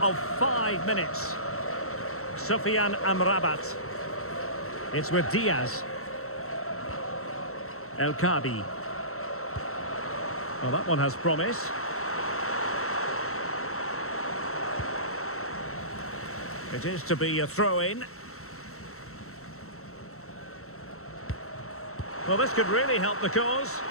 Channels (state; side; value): late; right; 0.63 ms